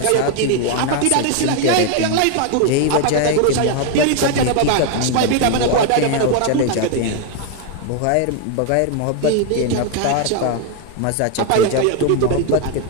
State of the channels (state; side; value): different; both; correlation 0.01